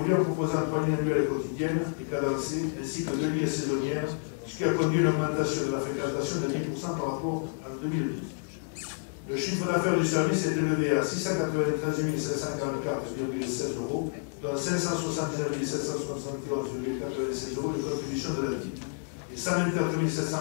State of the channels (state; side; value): silent; right; digital silence